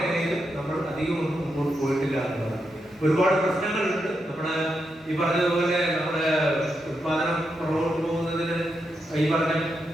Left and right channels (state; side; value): normal; both; correlation 0.84